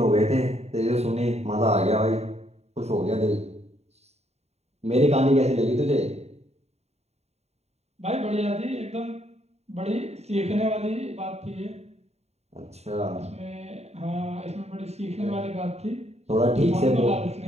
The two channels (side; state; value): left; late; 0.31 ms